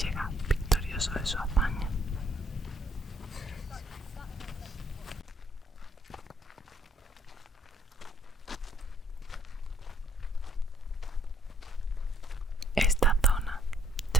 victorioso de su hazaña. Esta zona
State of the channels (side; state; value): both; normal; correlation 0.63